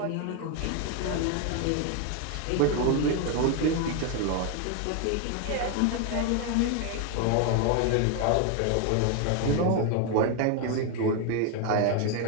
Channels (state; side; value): different; both; correlation 0.01